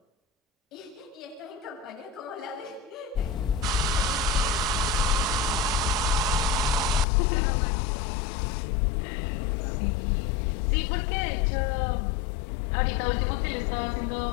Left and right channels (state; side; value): drops out; right; at 7.1 s